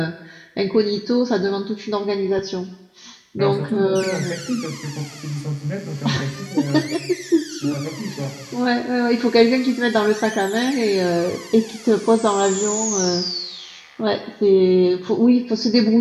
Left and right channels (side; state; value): both; identical; correlation 1.00